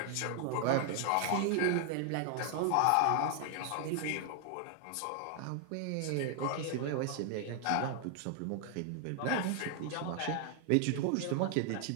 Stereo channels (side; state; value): both; different; correlation 0.00